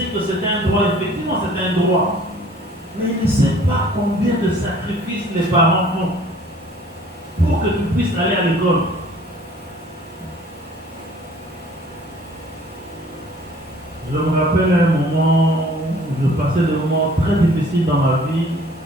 que c'est un droit, effectivement c'est un droit. Mais il ne sait pas combien de sacrifices les parents font pour que tu puisses aller à l'école. Je me rappelle un moment où je passais des moments très difficiles dans ma vie.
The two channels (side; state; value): both; normal; correlation 0.53